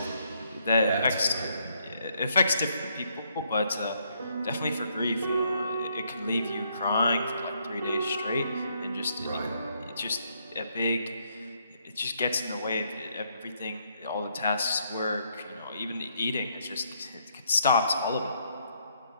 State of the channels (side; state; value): both; inverted; correlation -0.72